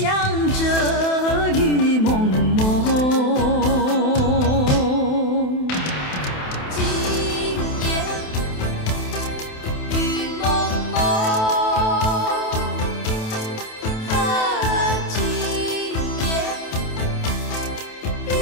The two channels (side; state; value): right; late; 28 ms